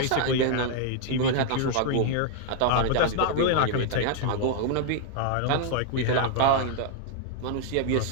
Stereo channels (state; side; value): different; both; correlation 0.00